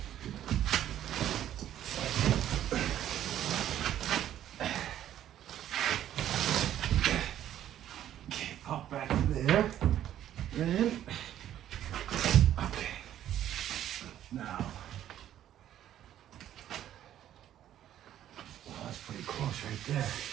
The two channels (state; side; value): quieter; left; 11.5 dB